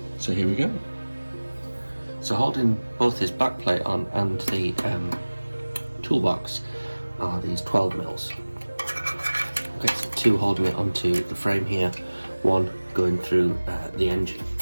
So here we go. So holding both this back plate on and the toolbox are these 12 mils. Okay, so two holding it onto the frame here, one going through the engine.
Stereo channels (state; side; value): inverted; both; correlation -1.00